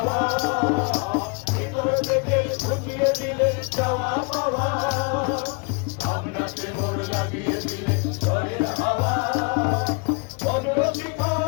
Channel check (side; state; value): right; quieter; 32.2 dB